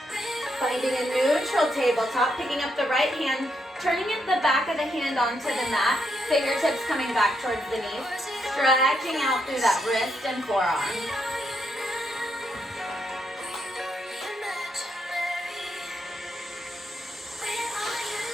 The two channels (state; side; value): normal; both; correlation 0.79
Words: Finding a neutral tabletop, picking up the right hand, turning it the back of the hand onto the mat, fingertips coming back towards the knees, stretching out through that wrist and forearm.